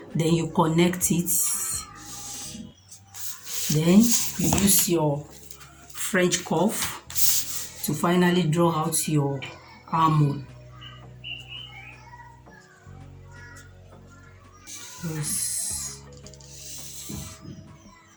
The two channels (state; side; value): identical; both; correlation 1.00